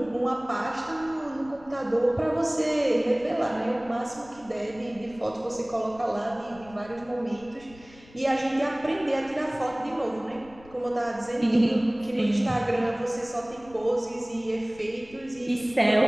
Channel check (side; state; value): left; noise; rumble, 23 dB below the sound